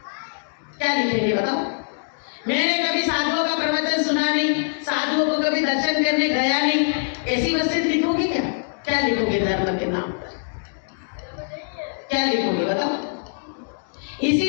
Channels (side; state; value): right; silent; digital silence